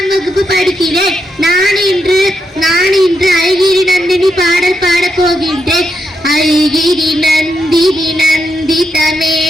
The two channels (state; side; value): normal; both; correlation 0.82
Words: வகுப்பு படிக்கிறேன். நான் இன்று ஐகிரி நந்தினி பாடல் பாடப் போகின்றேன். ஐகிரி நந்தினி நந்தித